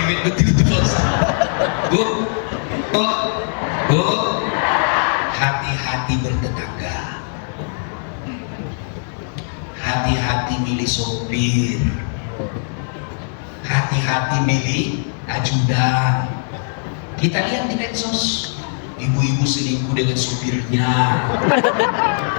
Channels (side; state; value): right; silent; digital silence